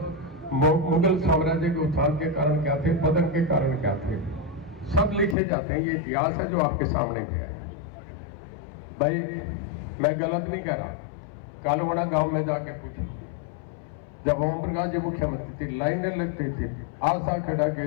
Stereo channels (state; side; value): drops out; right; at 5.4 s